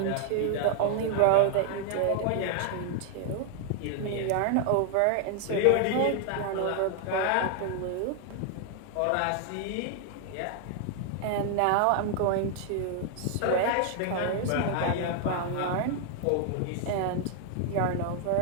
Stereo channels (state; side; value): different; both; correlation 0.00